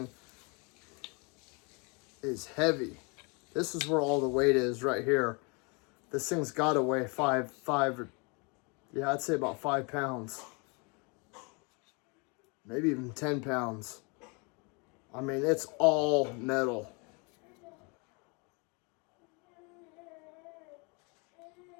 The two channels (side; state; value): right; quieter; 31.7 dB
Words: is heavy. This is where all the weight is right here. This thing's got to weigh yeah, I'd say about 5 pounds. Maybe even 10 pounds. I mean, it's all metal.